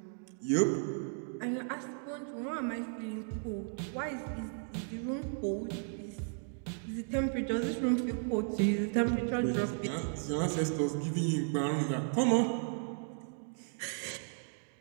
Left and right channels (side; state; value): left; silent; 55 dB below the other